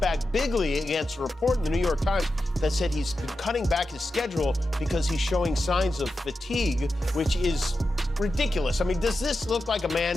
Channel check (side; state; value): both; normal; correlation 0.90